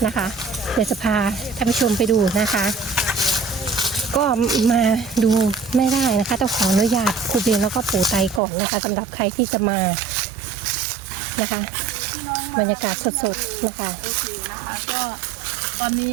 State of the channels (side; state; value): left; drops out; at 8.4 s